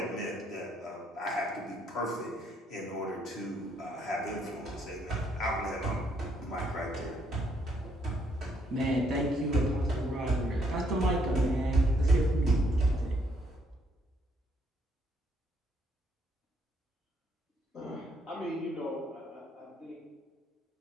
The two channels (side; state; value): both; normal; correlation 0.71